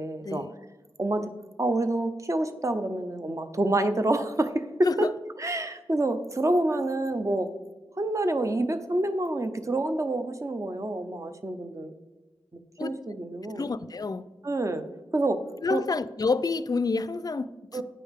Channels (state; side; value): normal; both; correlation 0.83